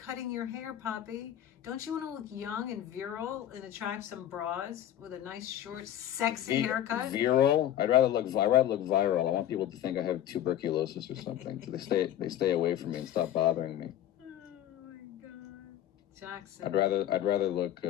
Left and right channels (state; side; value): quieter; right; 11.6 dB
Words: your hair, Poppy. Don't you want to look young and virile and attract some bras with a nice, short, sexy haircut? Virile? I'd rather look viral. I want people to think I have tuberculosis or something. So they stay away from me and stop bothering me. Oh my God, Jackson. I'd rather look